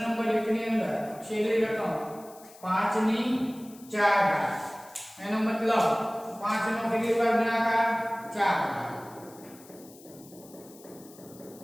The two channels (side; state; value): left; noise; hiss, 22 dB below the sound